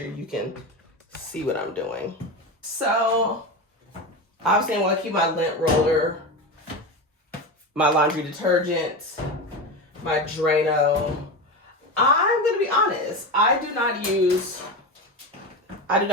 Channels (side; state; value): both; normal; correlation 0.21